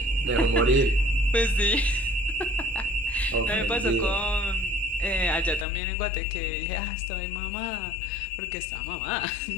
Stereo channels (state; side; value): drops out; right; at 5.7 s